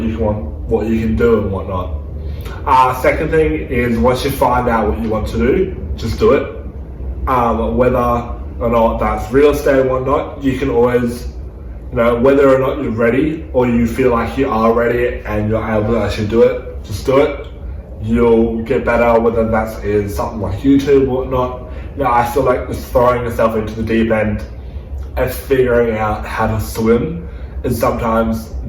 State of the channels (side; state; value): both; identical; correlation 1.00